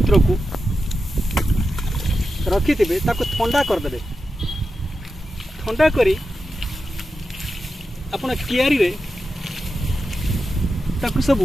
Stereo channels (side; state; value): both; normal; correlation 0.90